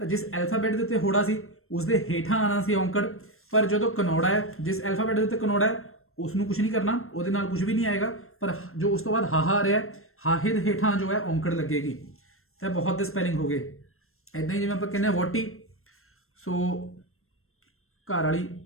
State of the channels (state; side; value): late; right; 0.62 ms